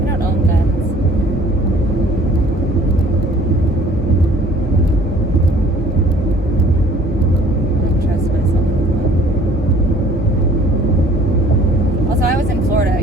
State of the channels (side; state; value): both; normal; correlation 0.54